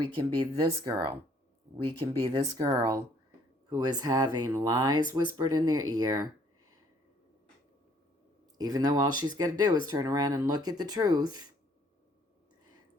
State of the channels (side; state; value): both; normal; correlation 0.62